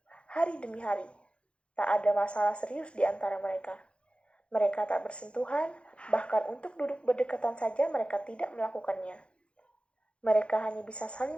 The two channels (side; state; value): right; late; 0.058 ms